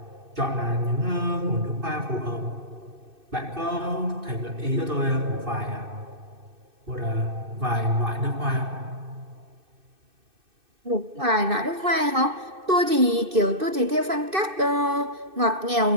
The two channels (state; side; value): late; left; 2.6 ms